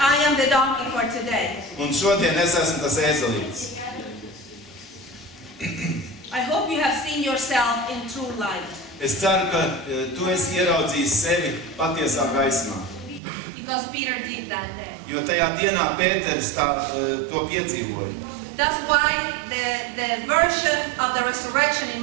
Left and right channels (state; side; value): drops out; left; at 13.2 s